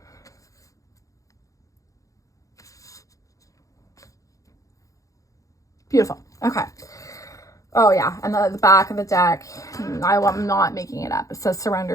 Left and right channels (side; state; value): right; late; 0.16 ms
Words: Beautiful. Okay. Oh yeah, and the back of the deck, I'm not making it up. It says surrender